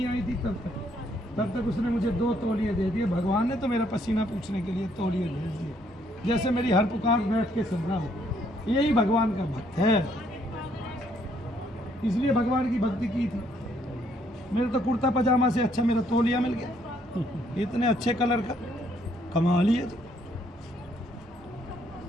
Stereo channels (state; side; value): normal; both; correlation 0.69